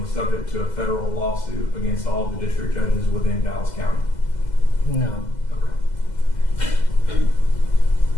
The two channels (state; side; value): late; right; 2.0 ms